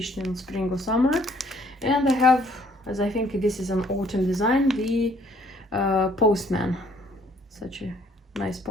in spring or summer. And I have, as I think this is an autumn design, the postman, such a nice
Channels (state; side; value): normal; both; correlation 0.62